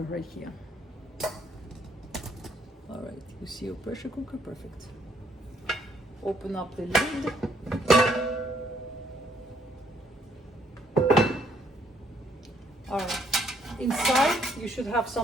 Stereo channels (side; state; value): both; normal; correlation 0.69